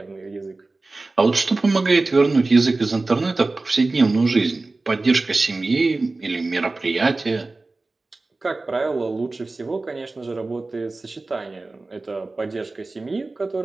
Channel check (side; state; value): left; quieter; 3.3 dB